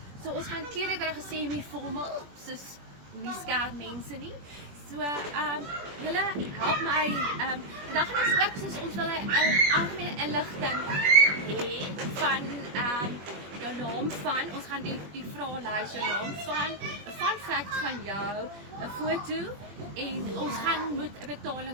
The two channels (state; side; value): late; left; 21 ms